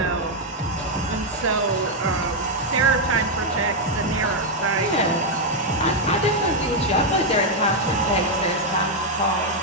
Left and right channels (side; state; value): both; normal; correlation 0.01